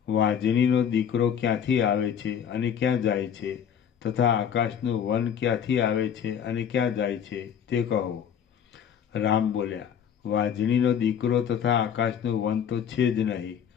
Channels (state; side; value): quieter; right; 8.2 dB